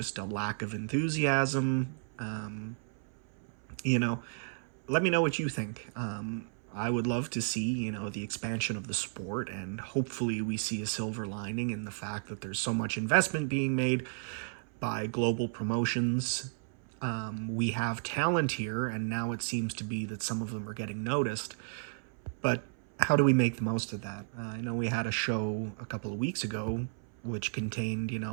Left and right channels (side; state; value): left; silent; 56 dB below the other